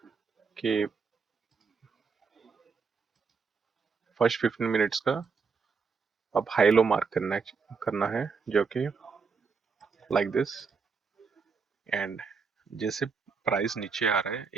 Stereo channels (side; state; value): left; quieter; 5.2 dB